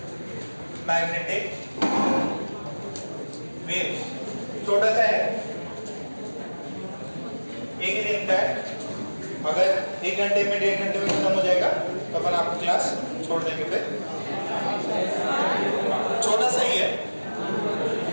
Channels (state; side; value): inverted; both; correlation -1.00